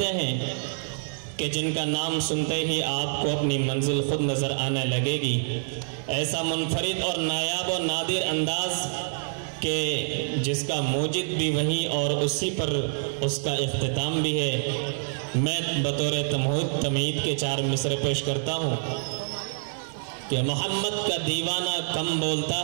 ہیں کہ جن کا نام سنتے ہی آپ کو اپنی منزل خود نظر آنے لگے گی۔ ایسا منفرد اور نایاب و نادر انداز کہ جس کا موجد بھی وہی اور اسی پر اس کا اختتام بھی ہے۔ میں بطور تمہید کے 4 مصرے پیش کرتا ہوں کہ محمد کا دیوانہ کم بولتا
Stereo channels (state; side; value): silent; left; 59 dB below the other